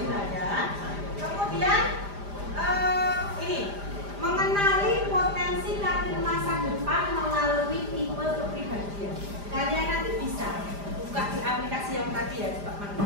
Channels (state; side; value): late; left; 5.0 ms